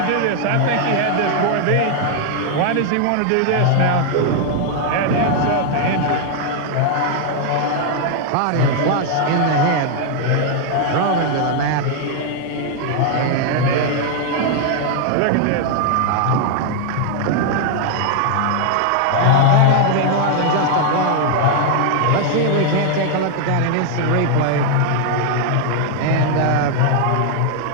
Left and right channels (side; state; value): both; different; correlation 0.00